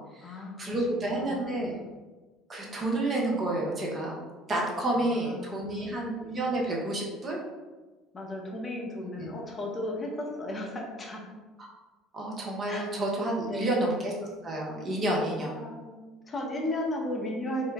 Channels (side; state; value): both; normal; correlation 0.53